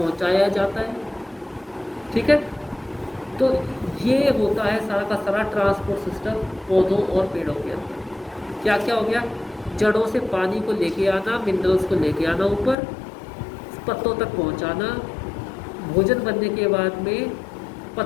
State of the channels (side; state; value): right; drops out; at 12.8 s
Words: जाता है, ठीक है। तो ये होता है सारा का सारा ट्रांसपोर्ट सिस्टम पौधों और पेड़ों के अंदर। क्या क्या हो गया? जड़ों से पानी को लेके आना, मिनरल्स को लेके आना ऊपर, पत्तों तक पहुंचाना, भोजन बनने के बाद में